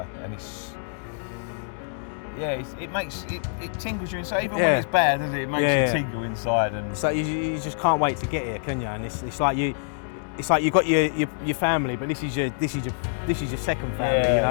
and it tingles you inside. Even when it's bad, doesn't it? It makes you tingle inside, and so you just can't wait to get here, can you? And it's like you got your family, but this is your second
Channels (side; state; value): right; silent; digital silence